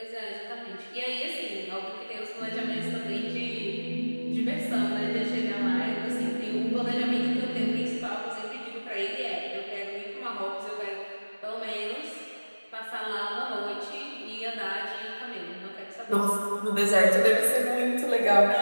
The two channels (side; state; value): both; inverted; correlation -1.00